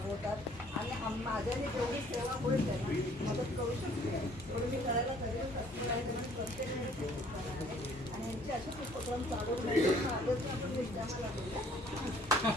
आणि माझ्याने जेवढी सेवा होईल त्यांना मदत करू शकते तेवढी मी करायला करेल. तसं आहे त्यामुळे प्रत्येक वेळेस ते करणार आहे आणि यांचे असेच उपक्रम चालू राहिले. आजच आपण विद्यामाला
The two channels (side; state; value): both; normal; correlation 0.58